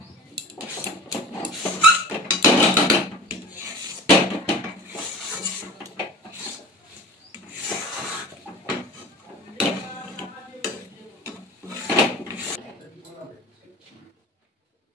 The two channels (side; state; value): both; normal; correlation 0.38